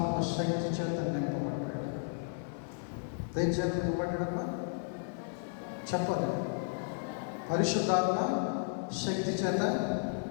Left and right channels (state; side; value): silent; right; 55 dB below the other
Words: శక్తి చేత నింపబడ్డాడు. దేని చేత నింపబడ్డాడమ్మా చెప్పదు. పరిశుద్ధాత్మ శక్తి చేత